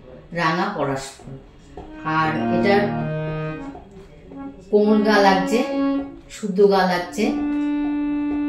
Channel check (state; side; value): identical; both; correlation 1.00